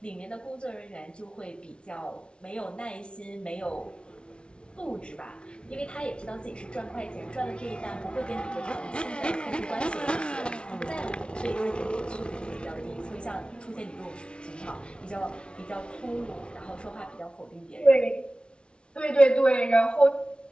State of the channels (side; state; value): right; late; 0.057 ms